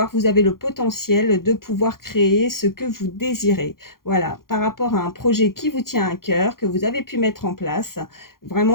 vous avez le potentiel de pouvoir créer ce que vous désirez. Voilà, par rapport à un projet qui vous tient à cœur, que vous avez pu mettre en place,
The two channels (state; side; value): late; right; 0.92 ms